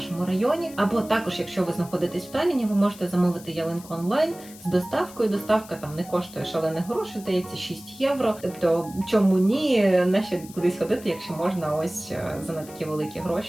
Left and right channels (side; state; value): left; noise; hiss, 19 dB below the sound